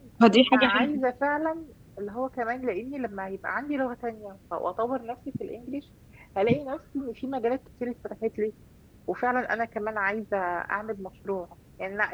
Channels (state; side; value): identical; both; correlation 1.00